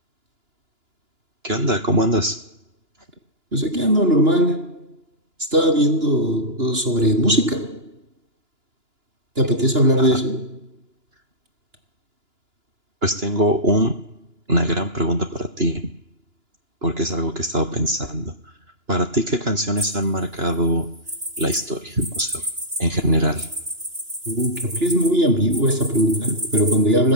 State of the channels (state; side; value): late; left; 2.9 ms